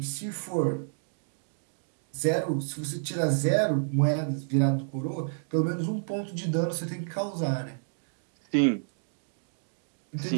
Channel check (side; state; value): left; silent; digital silence